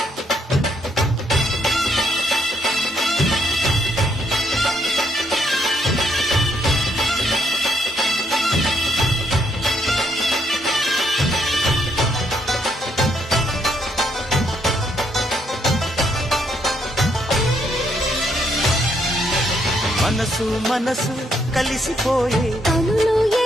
మనసు మనసు కలిసిపోయే కనులు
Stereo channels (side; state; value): both; normal; correlation 0.74